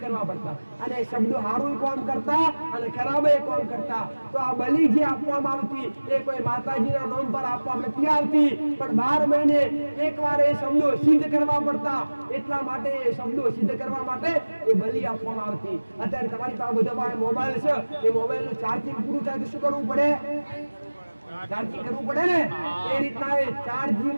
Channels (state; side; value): inverted; both; correlation -1.00